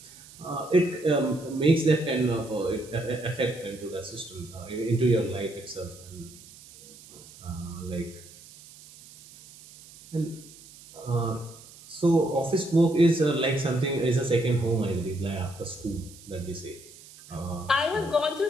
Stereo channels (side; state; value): right; noise; hiss, 20 dB below the sound